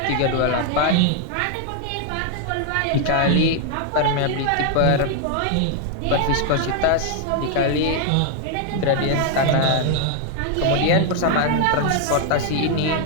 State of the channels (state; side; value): different; both; correlation 0.00